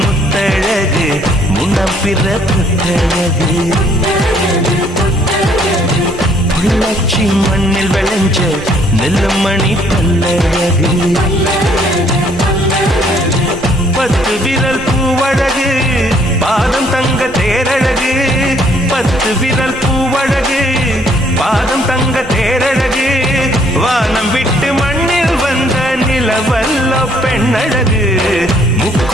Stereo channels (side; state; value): both; normal; correlation 0.65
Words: முத்தழகு முனம் பிற பொட்டழகு பொள்ளாச்சி மண்ணில் விளைஞ்ச நெல்லுமணி பல்லழகு பத்து விரல் பூவழகு பாதம் தங்க தேரழகு பத்து விரல் பூவழகு பாதம் தங்க தேரழகு வானம் விட்டு மண்ணில் வந்த நிலவல்ல பெண்ணழகு